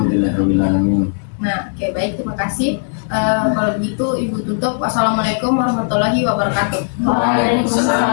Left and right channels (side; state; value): right; silent; digital silence